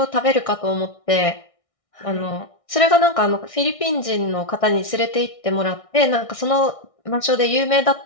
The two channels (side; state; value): right; late; 1.6 ms